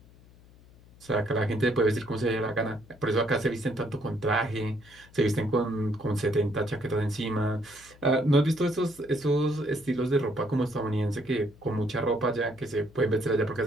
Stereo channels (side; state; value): left; noise; hum, 24 dB below the sound